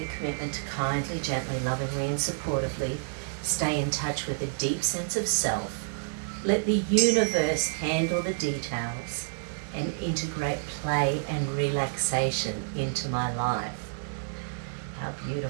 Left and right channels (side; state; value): left; silent; 59 dB below the other